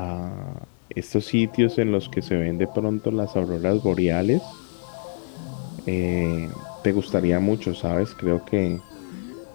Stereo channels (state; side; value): silent; right; digital silence